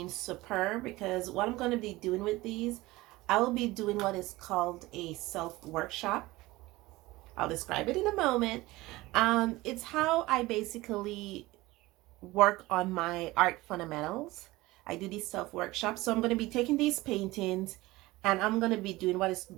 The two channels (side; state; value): left; quieter; 19.7 dB